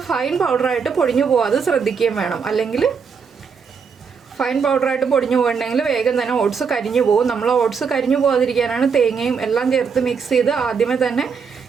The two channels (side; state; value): left; quieter; 5.9 dB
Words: ഫൈൻ പൗഡറായിട്ട് പൊടിഞ്ഞു പോകാതെ ശ്രദ്ധിക്കുകയും വേണം. അല്ലെങ്കിൽ ഫൈൻ പൗഡറായിട്ട് പൊടിഞ്ഞു പോകണമെങ്കിൽ വേഗം തന്നെ ഓട്സ് കരിഞ്ഞു പോകും. നമ്മൾ ഓട്സ് കരിഞ്ഞു പോകാതിരിക്കാനാണ് തേങ്ങയും എല്ലാം ചേർത്ത് മിക്സ് ചെയ്ത് ആദ്യമേ തന്നെ